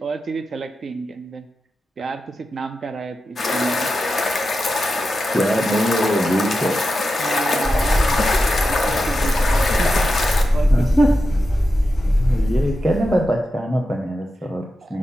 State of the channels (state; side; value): normal; both; correlation 0.90